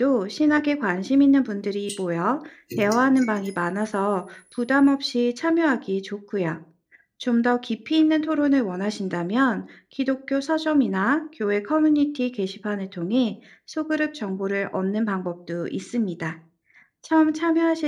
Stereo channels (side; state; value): both; identical; correlation 1.00